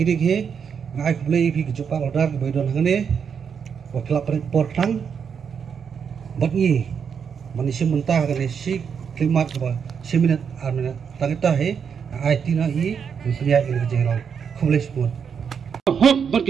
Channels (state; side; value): quieter; left; 6.9 dB